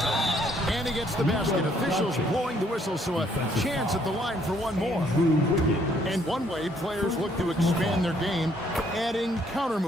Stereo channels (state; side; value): normal; both; correlation 0.67